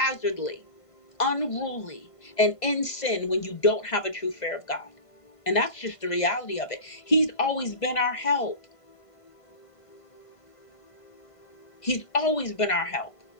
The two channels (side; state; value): right; late; 1.5 ms